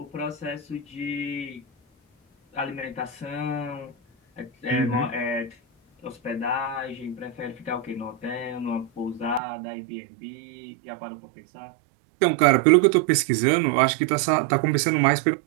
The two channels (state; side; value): drops out; left; at 9.4 s